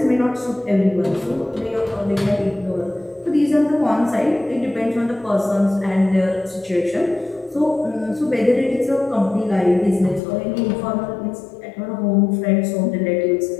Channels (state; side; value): drops out; right; at 10.2 s